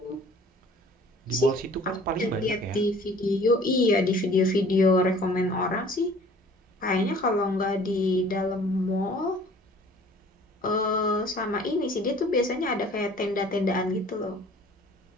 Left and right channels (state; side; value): normal; both; correlation 0.51